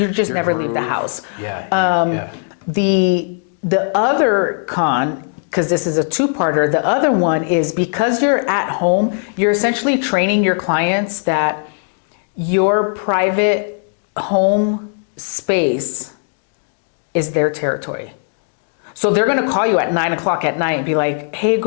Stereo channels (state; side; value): silent; right; 63 dB below the other